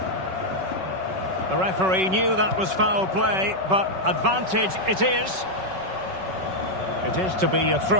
The referee knew that was foul play, but advantage it is. It is to be a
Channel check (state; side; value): late; left; 5.3 ms